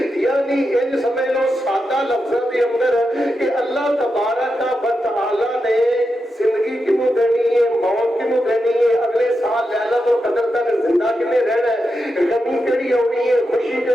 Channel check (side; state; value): both; normal; correlation 0.87